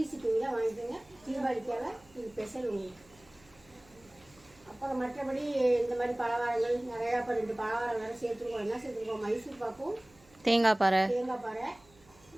ஷிப்பிங்கில் வாங்கிக்கோங்க. தீபாவளிக்காக இது ஸ்பெஷல் உங்களுக்கு. அப்புறம் மற்றபடி இந்த மாதிரி பலகாரங்கள் நிறையா, இப்போ 2 பலகாரம் வேறு சேர்த்துருக்கோம். என்ன சேர்த்துருக்கோம்? மைசூர் பாக்கும், தேங்காய் பாறை,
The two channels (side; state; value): right; noise; hum, 28 dB below the sound